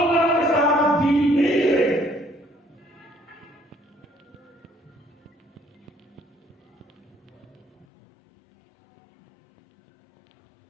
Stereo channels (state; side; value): drops out; right; at 7.9 s